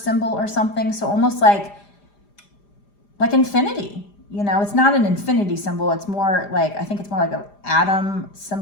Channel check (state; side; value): late; right; 5.0 ms